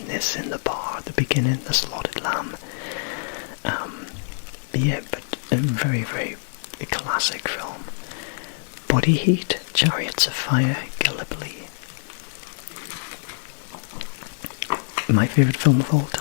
the bar at the beginning, The Slaughtered Lamb. Yeah, but a very, very classic film. Body Heat, Chariots of Fire, Gallipoli. My favourite film of all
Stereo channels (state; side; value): silent; right; digital silence